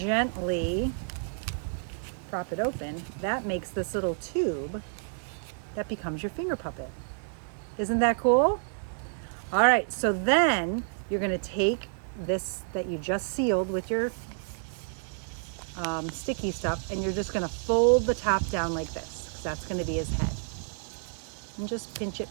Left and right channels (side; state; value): left; silent; digital silence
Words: prop it open, that makes this little tube that becomes your finger puppet. Isn't that cool? All right, so then you're going to take this that you just sealed with your sticky stuff, and you're just going to fold the top down like this, because that's going to be his head. And just pinch it,